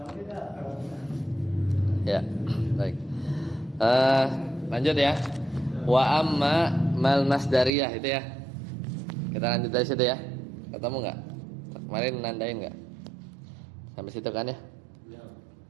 Ya, baik. Lanjut ya. Wa amma mal masdariyah itu ya. Kita lanjut dari situ ya. Ketemu nggak? Kemarin nandain nggak? Sampai situ kan ya?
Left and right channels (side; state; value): left; drops out; at 7.7 s